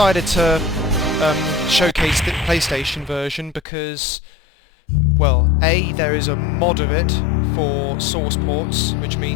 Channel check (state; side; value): drops out; right; at 3.7 s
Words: to showcase the PlayStation version because, well, A, there is a mod of it for source ports, which